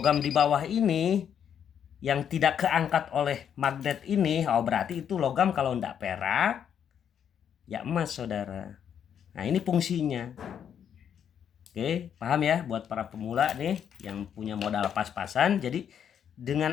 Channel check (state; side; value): quieter; right; 8.6 dB